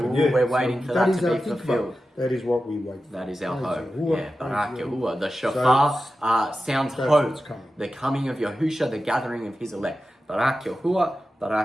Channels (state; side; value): normal; both; correlation 0.92